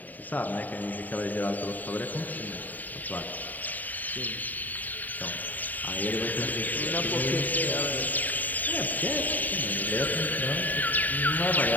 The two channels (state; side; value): late; right; 0.084 ms